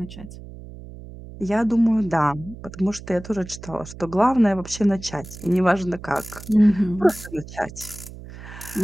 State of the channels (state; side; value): noise; right; hum, 15 dB below the sound